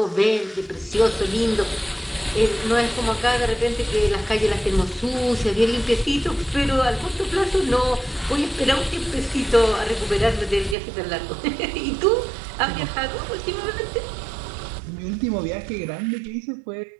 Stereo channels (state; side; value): drops out; left; at 10.8 s